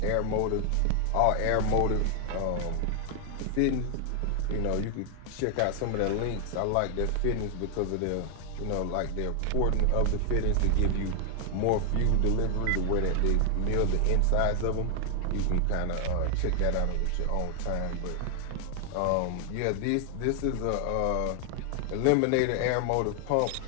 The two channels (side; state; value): both; different; correlation 0.00